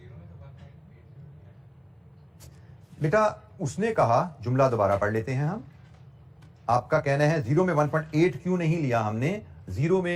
बेटा उसने कहा, जुमला दोबारा पढ़ लेते हैं हम। आपका कहना है 0 में 1.8 क्यों नहीं लिया हमने, 0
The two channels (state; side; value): identical; both; correlation 1.00